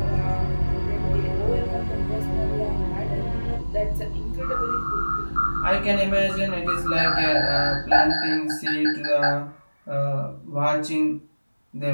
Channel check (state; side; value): inverted; both; correlation -1.00